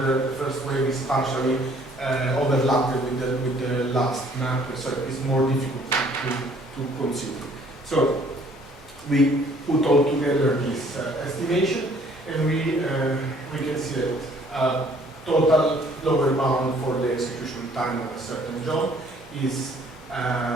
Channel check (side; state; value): both; normal; correlation 0.59